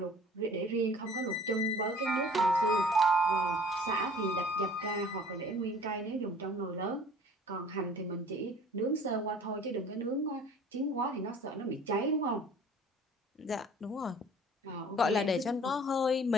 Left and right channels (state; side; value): normal; both; correlation 0.49